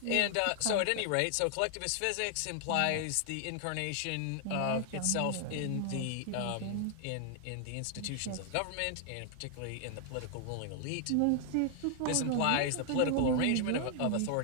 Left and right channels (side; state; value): both; different; correlation 0.00